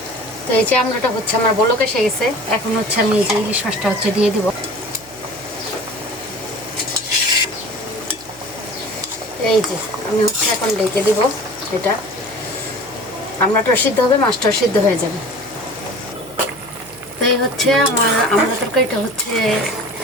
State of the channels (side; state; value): right; noise; hum, 24 dB below the sound